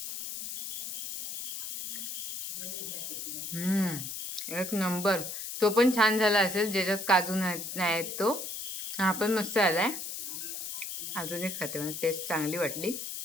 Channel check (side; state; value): left; noise; hiss, 5 dB below the sound